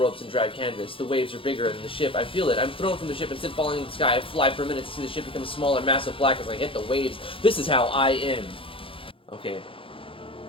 and drag canvas. The waves are bigger than the ship. I feel it. I'm thrown from the ship and sit falling into the sky. I fly for a minute to see the ship become smaller, massive black as I hit the waves. This is how I end. Okay.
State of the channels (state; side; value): late; right; 0.26 ms